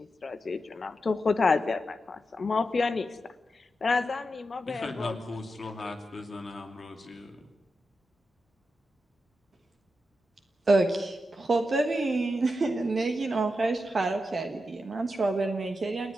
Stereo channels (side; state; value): both; normal; correlation 0.88